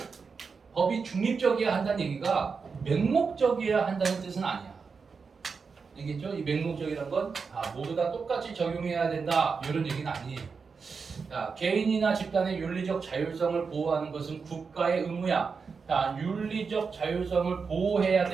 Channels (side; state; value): left; quieter; 5.2 dB